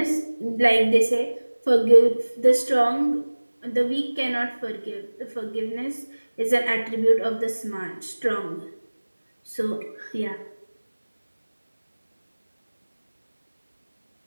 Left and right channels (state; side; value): inverted; both; correlation -1.00